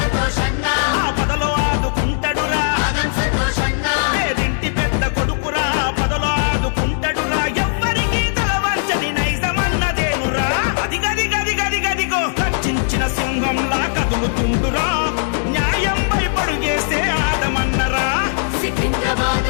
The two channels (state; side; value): silent; right; digital silence